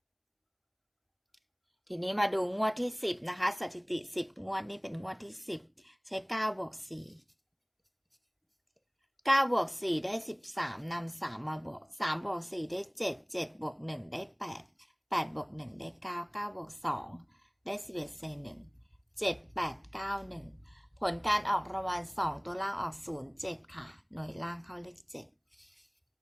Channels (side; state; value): both; identical; correlation 1.00